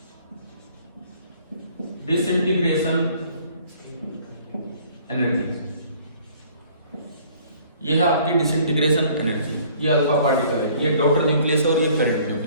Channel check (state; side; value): inverted; both; correlation -0.56